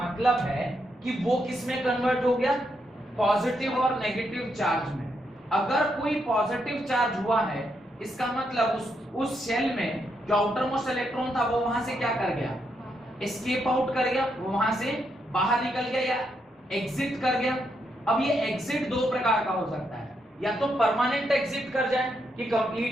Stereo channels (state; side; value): normal; both; correlation 0.79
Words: है कि वो किस में कन्वर्ट हो गया? पॉजिटिव और नेगेटिव चार्ज में। अगर कोई पॉजिटिव चार्ज हुआ है इसका मतलब उस शेल में जो आउटर मोस्ट इलेक्ट्रॉन था वो वहां से क्या कर गया? एस्केप आउट कर गया, वो वहां से बाहर निकल गया या एग्जिट कर गया। अब ये एग्जिट दो प्रकार का हो सकता है, या तो परमानेंट एग्जिट कर जाए कि